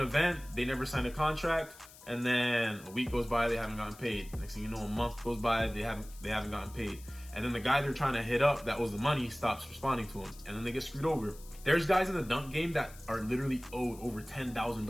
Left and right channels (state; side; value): noise; left; hiss, 20 dB below the sound